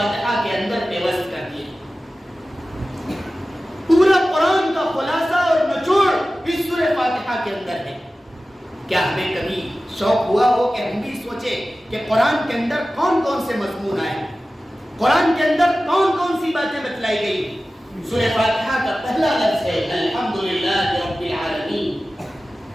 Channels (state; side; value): normal; both; correlation 0.96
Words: کے اندر پیوست کر دیے۔ پورا قرآن کا خلاصہ اور نچوڑ اس سورہ فاتحہ کے اندر ہے۔ کیا ہمیں کبھی شوق ہوا ہو کہ ہم بھی سوچیں کہ قرآن کے اندر کون کون سے مضمون آئے، قرآن کے اندر کون کون سی باتیں بتلائی گئی؟ سورہ فاتحہ کا پہلا لفظ ہے الحمدللہ رب العالمین،